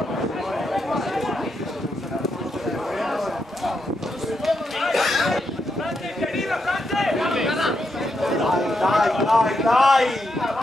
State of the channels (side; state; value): both; normal; correlation 0.82